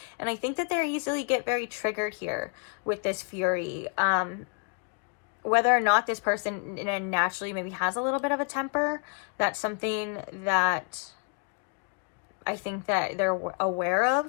And I think that they easily get very triggered here with this fury. Whether or not this person naturally maybe has a little bit of a temper, that's something that I think that they're aware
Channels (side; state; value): right; quieter; 38.4 dB